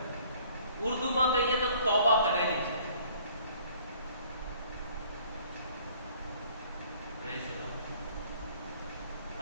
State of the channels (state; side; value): inverted; both; correlation -0.57